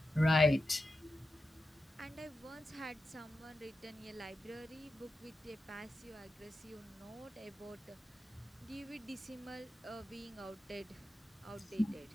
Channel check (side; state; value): both; normal; correlation 0.90